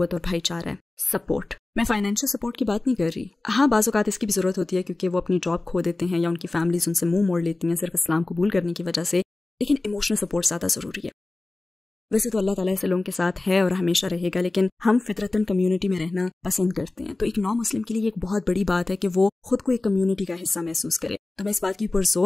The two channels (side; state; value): right; quieter; 3.0 dB